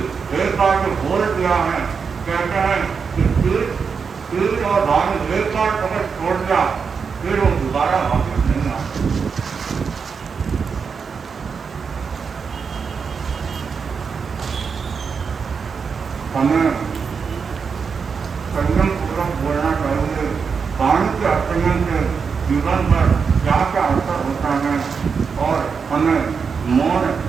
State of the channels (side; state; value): left; quieter; 5.8 dB